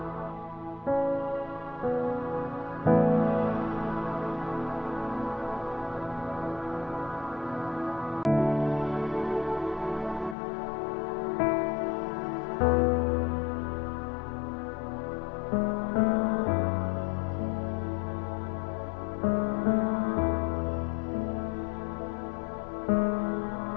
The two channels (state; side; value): drops out; right; at 10.4 s